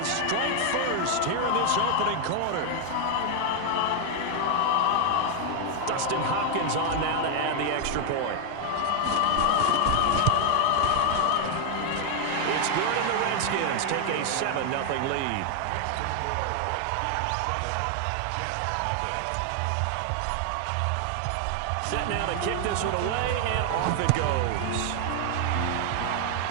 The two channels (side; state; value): both; different; correlation 0.00